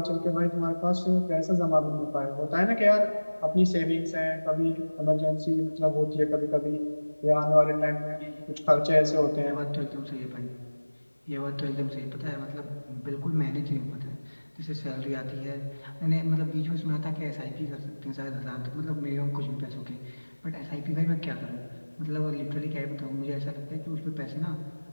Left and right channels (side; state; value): both; inverted; correlation -1.00